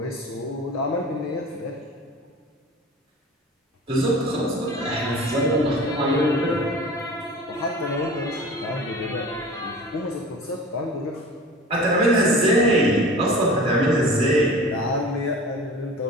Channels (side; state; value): both; normal; correlation 0.39